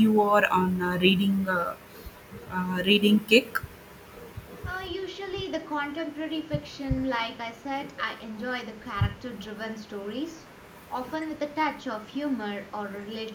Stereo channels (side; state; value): both; identical; correlation 1.00